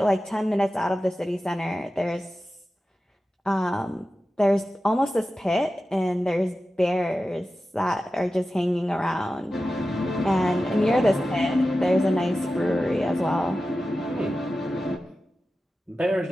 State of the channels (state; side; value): normal; both; correlation 0.93